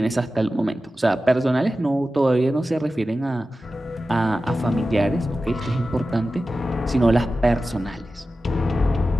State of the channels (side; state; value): both; normal; correlation 0.94